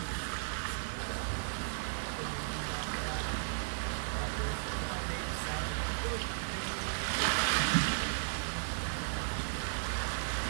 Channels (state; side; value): silent; left; digital silence